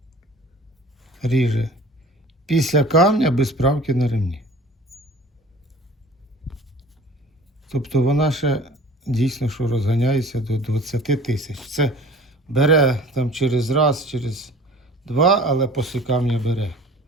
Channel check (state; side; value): normal; both; correlation 0.45